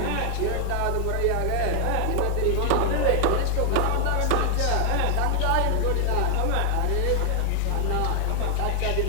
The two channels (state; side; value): different; both; correlation 0.00